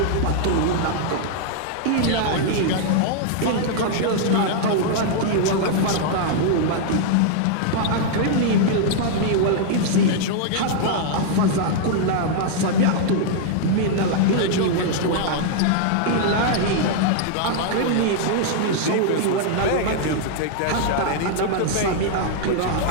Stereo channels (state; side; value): different; both; correlation -0.01